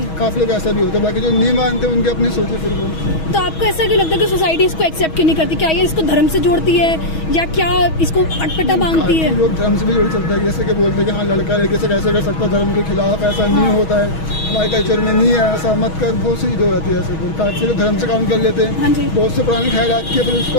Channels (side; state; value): right; late; 6.2 ms